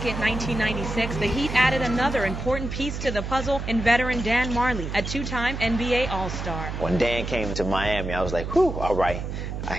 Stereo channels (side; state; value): right; noise; hum, 5 dB below the sound